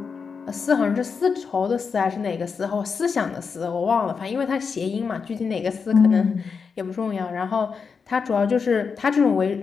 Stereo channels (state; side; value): quieter; right; 5.6 dB